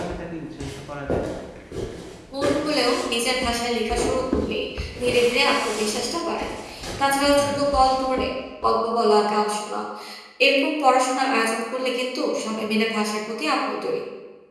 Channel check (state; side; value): identical; both; correlation 1.00